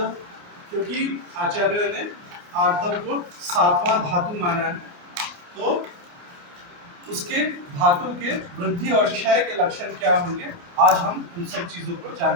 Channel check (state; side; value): late; left; 28 ms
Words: क्योंकि आचार्य ने आर्तव को सातवां धातु माना है, तो उसके धातु के वृद्धि और क्षय के लक्षण क्या होंगे, आज हम उन सब चीजों को